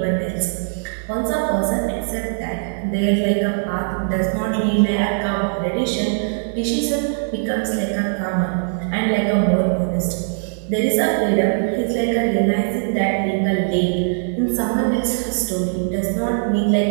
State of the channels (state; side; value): silent; left; digital silence